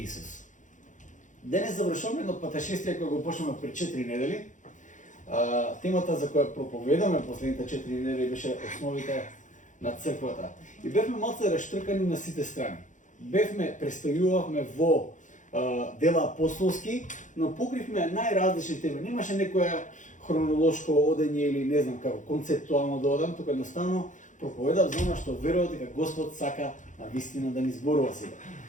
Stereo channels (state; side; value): late; right; 0.36 ms